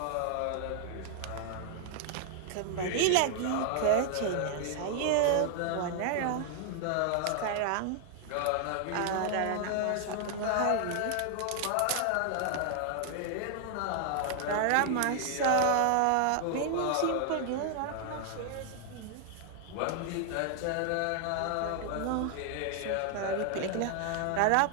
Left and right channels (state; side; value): different; both; correlation 0.00